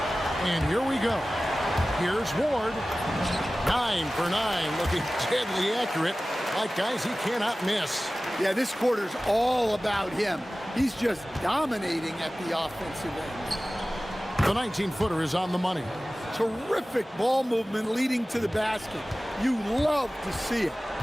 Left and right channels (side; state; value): both; normal; correlation 0.97